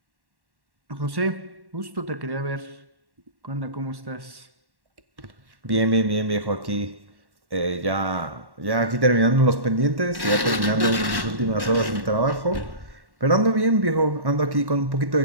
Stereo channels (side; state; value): left; late; 1.1 ms